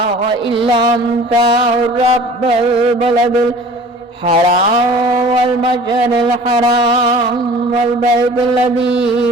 إلا أنت رب البلد الحرام والمشعر الحرام والبيت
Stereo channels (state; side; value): normal; both; correlation 0.45